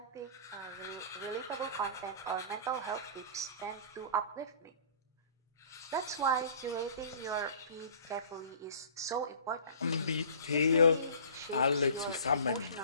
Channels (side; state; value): both; inverted; correlation -0.46